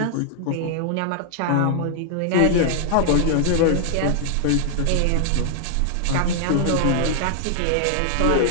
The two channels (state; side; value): different; both; correlation 0.00